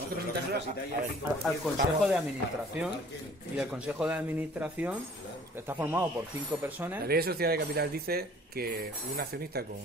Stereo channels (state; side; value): normal; both; correlation 0.53